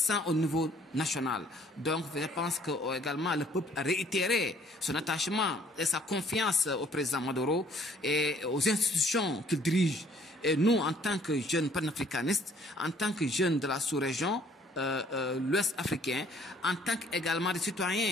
au niveau national. Donc je pense que également le peuple a réitéré son attachement et sa confiance au président Maduro et aux institutions qu'il dirige. Et nous, en tant que jeunes panafricanistes, en tant que jeunes de la sous-région, l'Ouest africain, en tant qu'également des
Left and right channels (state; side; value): normal; both; correlation 0.60